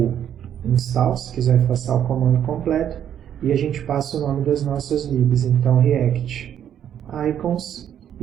install, se quiser passar o comando completo, e a gente passa o nome das nossas libs, então React Icons,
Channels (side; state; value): left; quieter; 9.7 dB